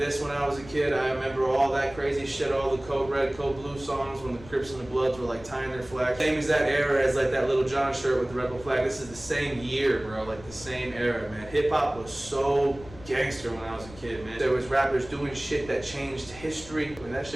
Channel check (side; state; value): left; noise; rumble, 18 dB below the sound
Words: when I was a kid. I remember all that crazy shit, all the Code Red, Code Blue songs when the Crips and the Bloods were like tying their flags. Same as that era as like that Little John shirt with the rebel flag. This is the same year, bro, like the same era, man. Hip hop was so gangster when I was a kid, man. There was rappers doing shit that changed history when that